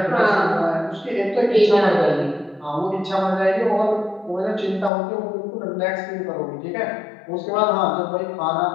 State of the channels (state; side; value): drops out; right; at 4.9 s